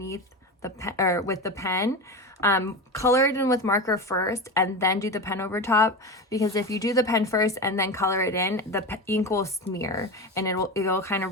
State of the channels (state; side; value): normal; both; correlation 0.23